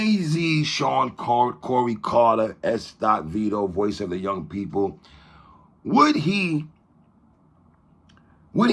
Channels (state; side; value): identical; both; correlation 1.00